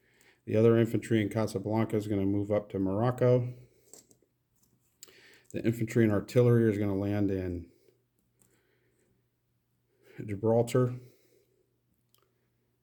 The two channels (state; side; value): identical; both; correlation 1.00